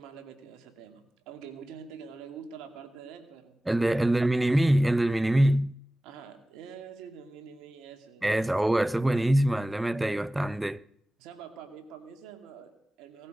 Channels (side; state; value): both; normal; correlation 0.97